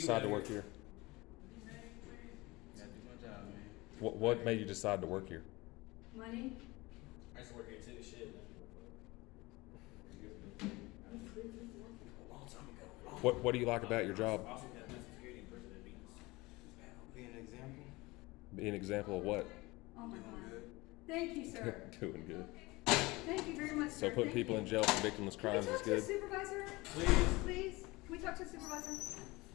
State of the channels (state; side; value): quieter; right; 22.2 dB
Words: to work here? Gotta do my job, man. What made you decide to work here? Money? I used to work here too, shit. A long time ago. What do you like about your job? I also had mental security in prison at Venus. Be an example. Be an example of what? Oh my God. Thank you, sir. Doing good. Thank you very much, So sir. putting Thank people you. in jail for victimless crimes Can we is talk to the good. supervisor? Please. Please? Can we talk to the supervisor?